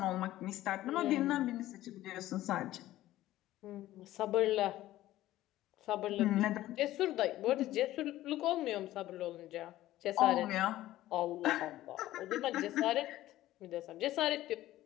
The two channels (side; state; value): right; quieter; 15.0 dB